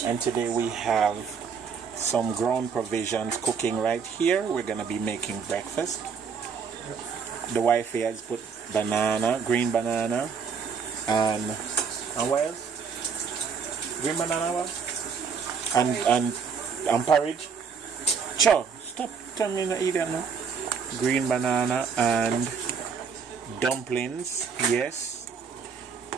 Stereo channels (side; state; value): left; quieter; 6.0 dB